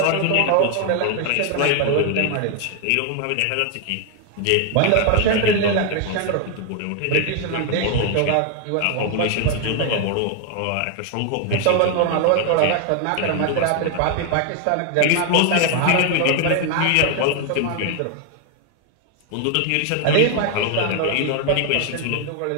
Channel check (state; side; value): different; both; correlation 0.00